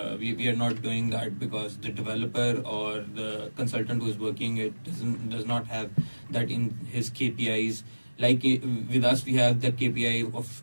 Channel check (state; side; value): inverted; both; correlation -1.00